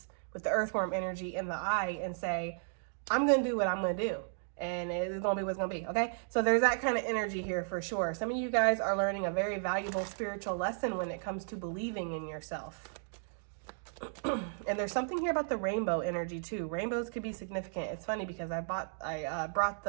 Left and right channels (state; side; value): silent; left; digital silence